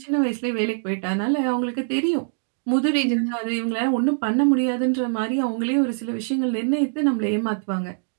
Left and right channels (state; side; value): silent; left; digital silence